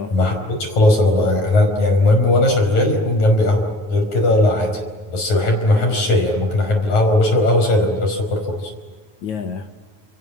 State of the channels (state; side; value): late; right; 9.3 ms